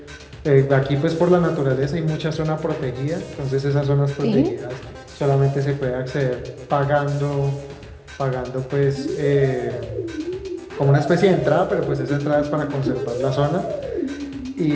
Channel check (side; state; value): both; identical; correlation 1.00